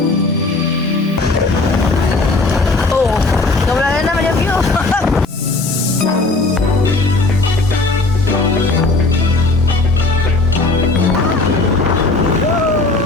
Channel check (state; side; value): quieter; right; 3.3 dB